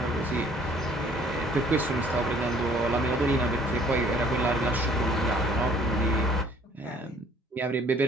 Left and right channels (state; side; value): normal; both; correlation 0.57